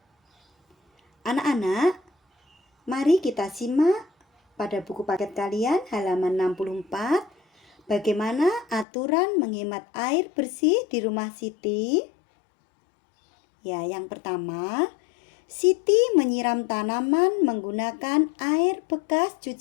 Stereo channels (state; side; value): drops out; right; at 8.8 s